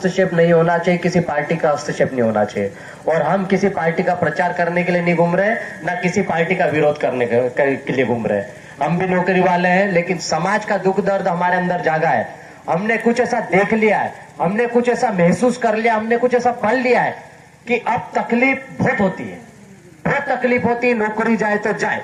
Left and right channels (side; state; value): both; identical; correlation 1.00